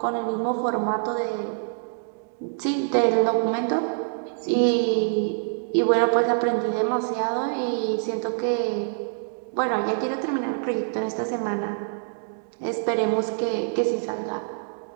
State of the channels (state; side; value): silent; left; digital silence